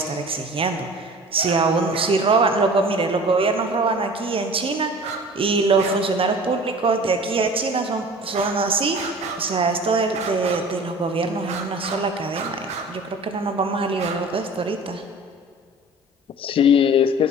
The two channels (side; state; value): both; normal; correlation 0.42